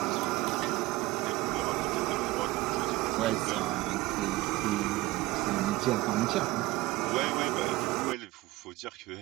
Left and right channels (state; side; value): quieter; left; 19.4 dB